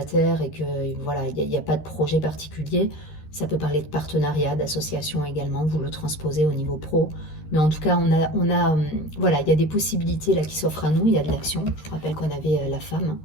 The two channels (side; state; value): right; late; 13 ms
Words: et que voilà, il n'y a pas de projet particulier, ça peut parler de partenariat, d'association également, vous le transposez au niveau pro. Mais en tout cas, voilà, il y a des possibilités là qui s'offrent à nous, il y a de l'action. Je vous rappelle qu'on avait la femme.